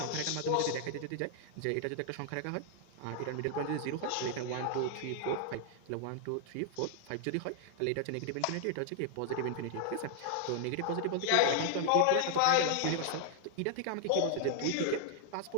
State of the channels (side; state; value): both; different; correlation 0.00